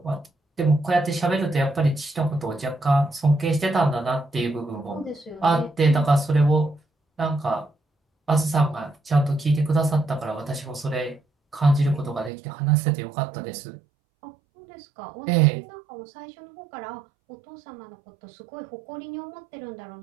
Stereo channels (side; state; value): left; drops out; at 12.3 s